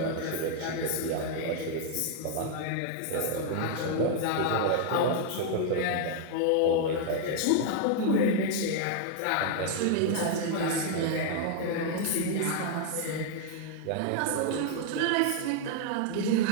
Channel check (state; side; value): different; both; correlation 0.00